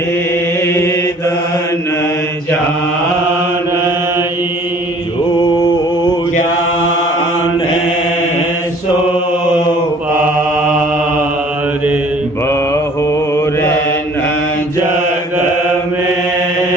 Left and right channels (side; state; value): both; normal; correlation 0.53